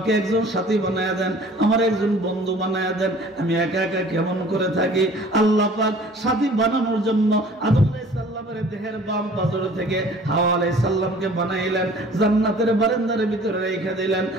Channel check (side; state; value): both; normal; correlation 0.49